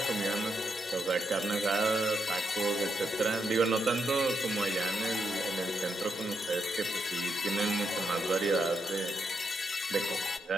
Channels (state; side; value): normal; both; correlation 0.81